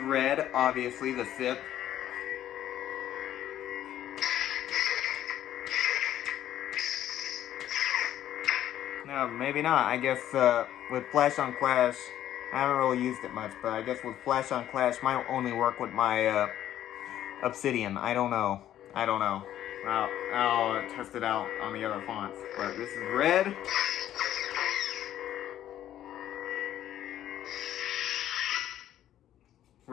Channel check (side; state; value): right; quieter; 11.9 dB